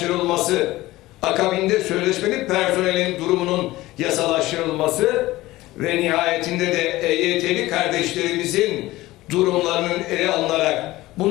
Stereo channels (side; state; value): right; quieter; 17.9 dB